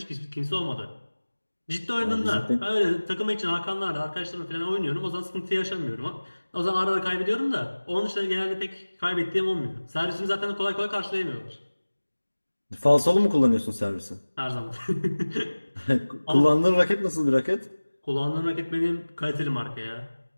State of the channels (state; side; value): inverted; both; correlation -1.00